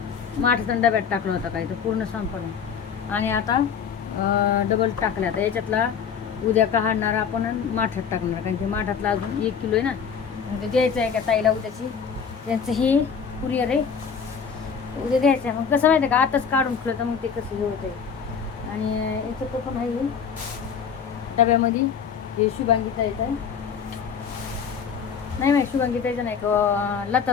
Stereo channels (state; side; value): quieter; right; 6.8 dB